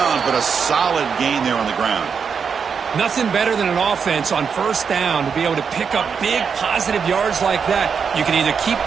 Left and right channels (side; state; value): left; quieter; 6.3 dB